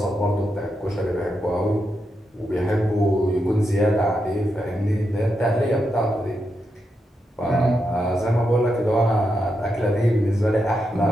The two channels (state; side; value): normal; both; correlation 0.85